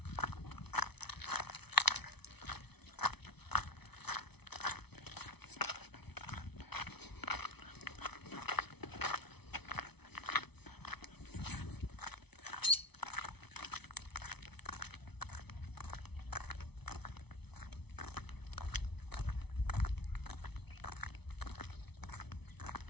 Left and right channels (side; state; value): right; late; 0.99 ms